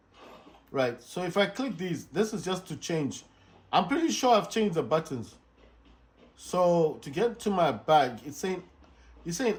right? So if I click these, this is just to change. I'm pretty sure I've changed the buttons. So to get to my bag, it's saying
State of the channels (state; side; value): identical; both; correlation 1.00